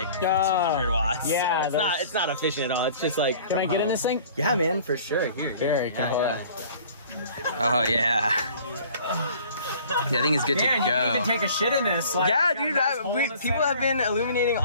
1,500 watts. Yeah, so it's not efficient at all. It's just like. Can I get in this thing? Yeah, man, for sure. Here. Very cool. Oh yeah. Yeah, I think it's good to go. You can even take a shit in this. Like, yeah, dude. People have been illuminating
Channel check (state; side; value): inverted; both; correlation -0.50